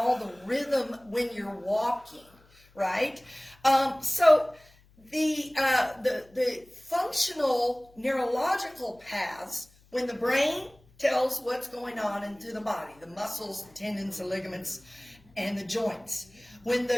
rhythm when you're walking, right? So the functional neurological paths, when the brain tells what's going on into the body, the muscles, the tendons, the ligaments, and the joints. When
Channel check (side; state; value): left; noise; hum, 29 dB below the sound